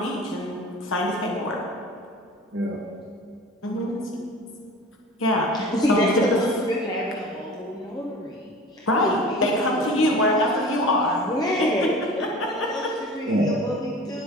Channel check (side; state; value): both; normal; correlation 0.39